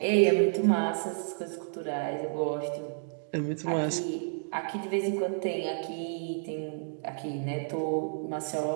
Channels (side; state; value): left; silent; digital silence